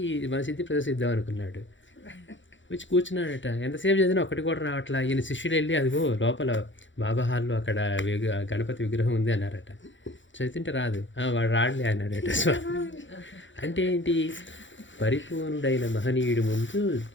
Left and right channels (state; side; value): late; right; 0.55 ms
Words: మన సిద్ధి ప్రదర్శిద్దాం అనుకున్నాడు. వచ్చి కూర్చున్నాడట. ఎంతసేపు చదివినా ఒకటి కూడా రావట్లా. ఈయన శిష్యులు వెళ్ళి అదిగో లోపల బాబా హాల్లో అక్కడ గణపతి విగ్రహం ఉంది అన్నారట. చదువుతుంటే రాదు. వాడు రాడలే అన్నాడట స్వామి. అంటే ఏంటి, పరిపూర్ణుడైన మహనీయుడి ముందు